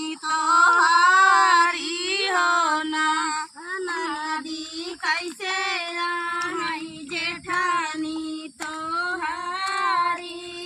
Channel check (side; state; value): both; identical; correlation 1.00